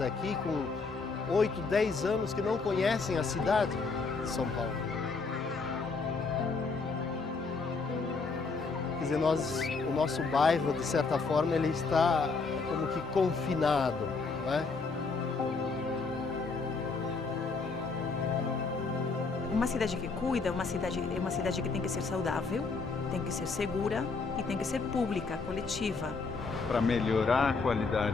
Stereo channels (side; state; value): right; quieter; 4.3 dB